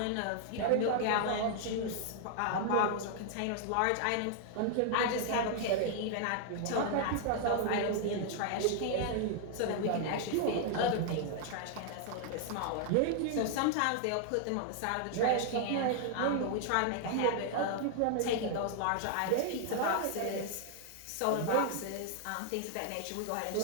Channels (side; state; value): both; different; correlation 0.00